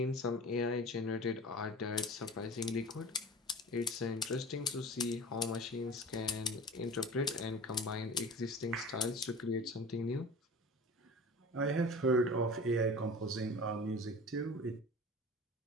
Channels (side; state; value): both; normal; correlation 0.38